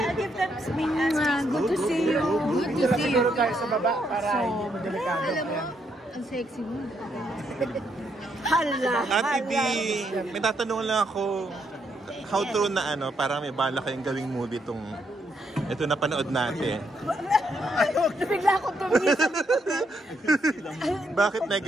give them some good to see you. Good to see you. tayo sa baba para hindi mo delikado. Alam mo, ang sexy mo. Hala, Ate D! hala. May tatanong lang ako. How true na parang may bala kayong gawing movie itong ito na panood natin. Bigla akong tumisip. Bakit may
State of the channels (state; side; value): normal; both; correlation 0.76